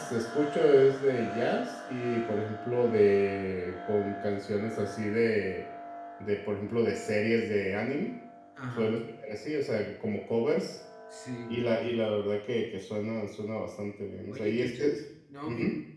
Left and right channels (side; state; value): both; identical; correlation 1.00